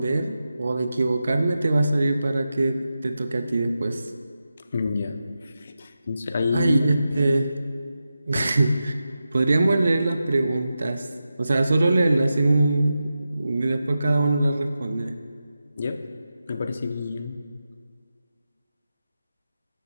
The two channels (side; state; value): both; inverted; correlation -0.91